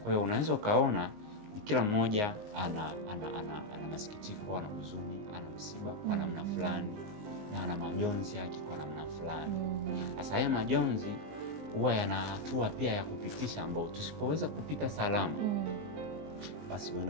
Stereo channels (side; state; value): left; late; 19 ms